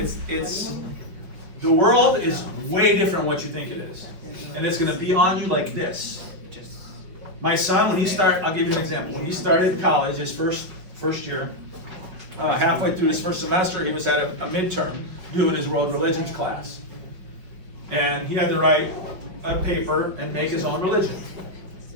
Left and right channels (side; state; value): left; late; 5.6 ms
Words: the world is way different than what you think it is. And it's gonna be on you like this. My son, I'll give you an example. When he started college, his first year, halfway through his first semester, he was at a midterm doing his world religions class. And he had to write a paper and make his own religion.